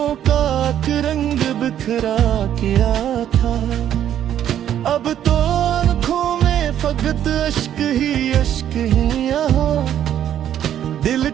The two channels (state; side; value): quieter; left; 10.5 dB